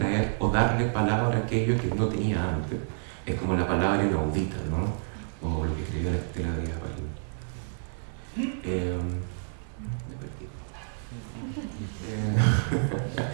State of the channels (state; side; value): silent; left; digital silence